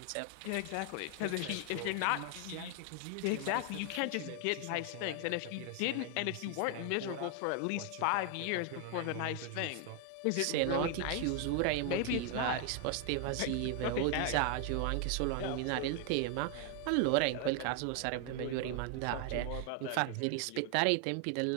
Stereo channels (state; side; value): different; both; correlation 0.00